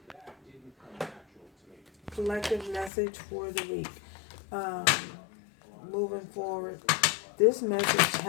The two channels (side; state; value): right; drops out; at 2.9 s